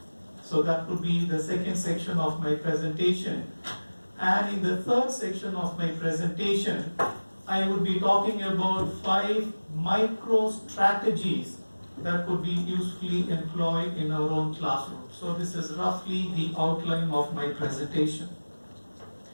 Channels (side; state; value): both; inverted; correlation -1.00